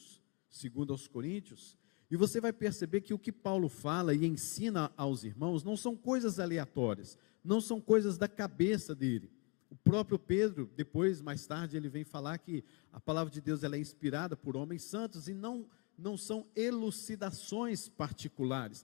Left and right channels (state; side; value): quieter; right; 31.4 dB